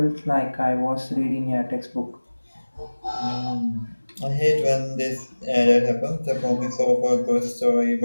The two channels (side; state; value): both; inverted; correlation -1.00